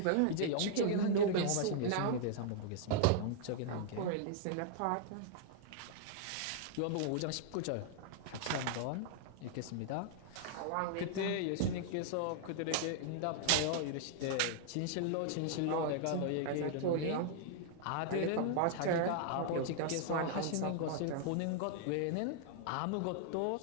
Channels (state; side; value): different; both; correlation -0.01